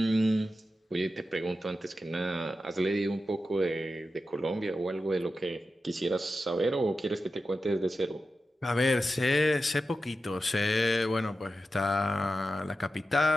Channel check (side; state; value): both; normal; correlation 0.91